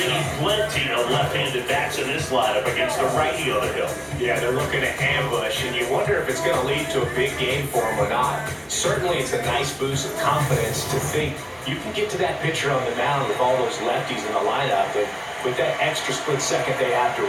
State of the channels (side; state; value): both; identical; correlation 1.00